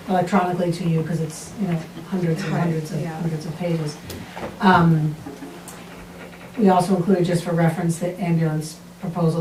electronically to you, because it's, hundreds and hundreds of pages. We also included, just for reference, the ambulance proposal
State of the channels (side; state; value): both; identical; correlation 1.00